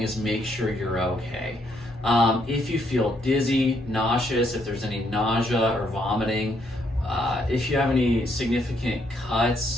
is make sure you're okay. If you feel dizzy, nauseous, if there's any nausea or vomiting, if you have any significant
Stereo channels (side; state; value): both; normal; correlation 0.73